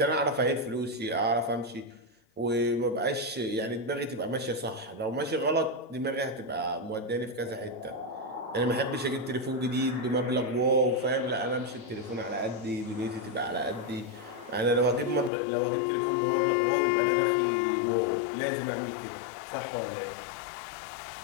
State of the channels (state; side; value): drops out; right; at 15.3 s